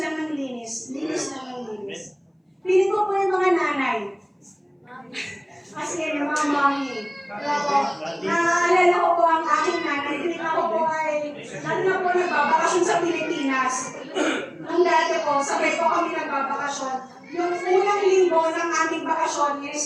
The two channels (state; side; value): identical; both; correlation 1.00